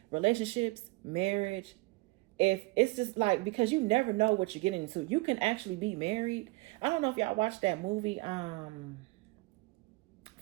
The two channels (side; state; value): left; quieter; 23.7 dB